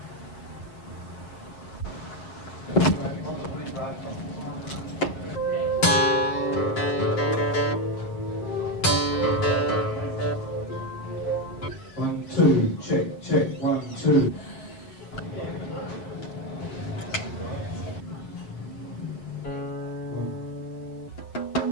One, two, check, 1, 2.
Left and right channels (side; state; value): right; late; 7.5 ms